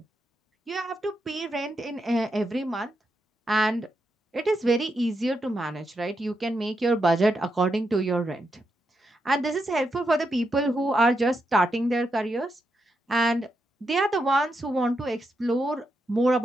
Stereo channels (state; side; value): normal; both; correlation 0.83